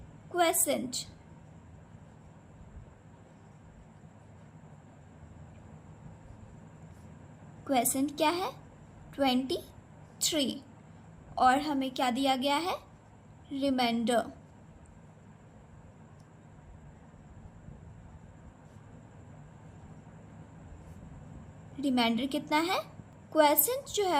क्वोशिएंट। क्वोशिएंट क्या है? 23। और हमें क्या दिया गया है? रिमाइंडर। रिमाइंडर कितना है? क्वोशिएंट जो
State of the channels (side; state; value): both; identical; correlation 1.00